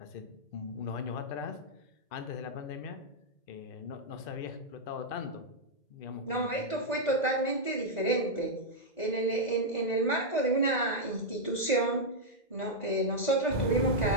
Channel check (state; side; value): late; right; 2.0 ms